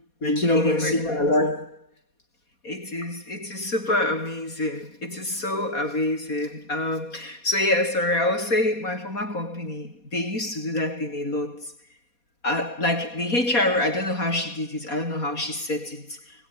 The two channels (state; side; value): late; right; 4.2 ms